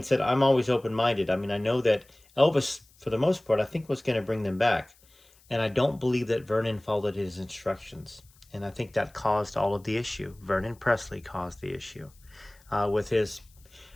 said, I'm always open-minded. I mean, I know that Elvis, for the most part, I think was going to bring them back. And I don't believe that Vernon followed his instructions. And I think that caused all of the issue. Vernon Presley caused the issue with his,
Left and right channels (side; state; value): left; noise; hiss, 30 dB below the sound